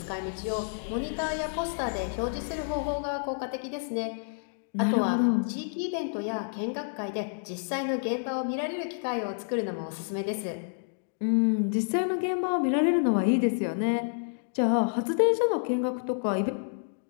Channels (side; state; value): right; silent; digital silence